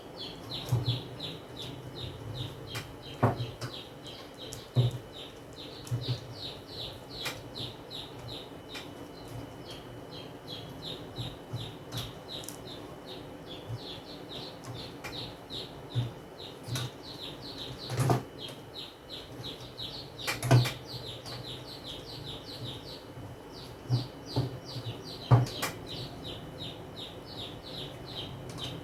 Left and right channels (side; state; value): both; identical; correlation 1.00